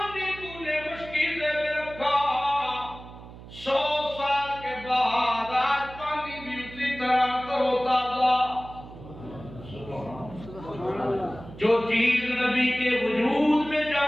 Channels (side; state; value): right; noise; hum, 16 dB below the sound